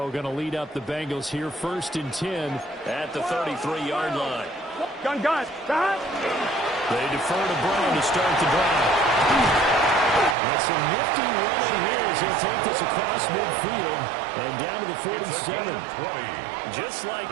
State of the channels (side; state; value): left; drops out; at 10.4 s